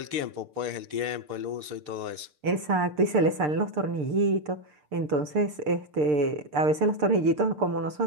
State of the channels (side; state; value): left; late; 6.7 ms